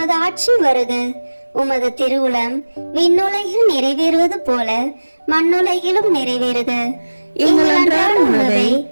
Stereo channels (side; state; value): both; inverted; correlation -1.00